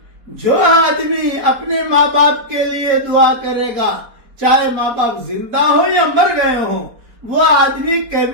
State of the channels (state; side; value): late; left; 4.1 ms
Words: جو آدمی اپنے ماں باپ کے لیے دعا کرے گا، چاہے ماں باپ زندہ ہو یا مر گئے ہوں، وہ آدمی